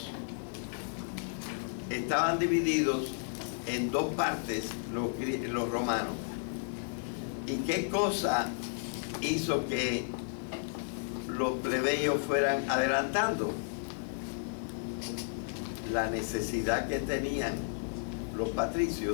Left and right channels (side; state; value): right; silent; 56 dB below the other